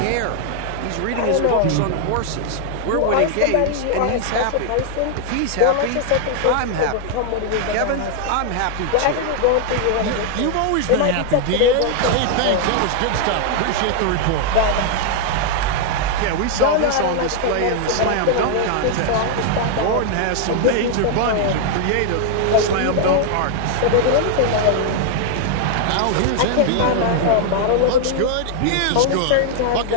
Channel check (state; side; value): different; both; correlation 0.00